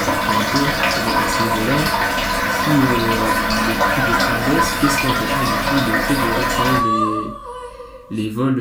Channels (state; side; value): identical; both; correlation 1.00